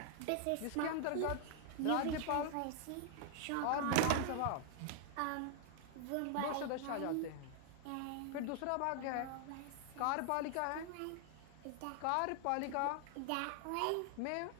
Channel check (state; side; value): different; both; correlation 0.00